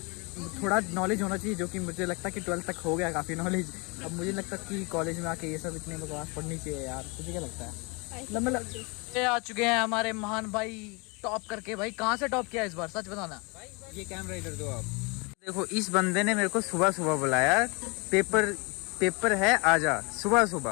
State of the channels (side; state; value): right; quieter; 29.3 dB